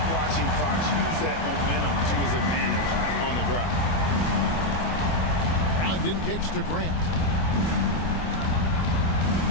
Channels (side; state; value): right; late; 25 ms